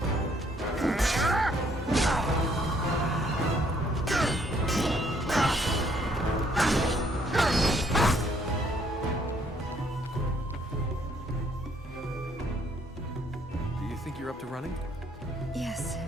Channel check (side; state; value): both; normal; correlation 0.66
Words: Do you think you're up to running? Yes.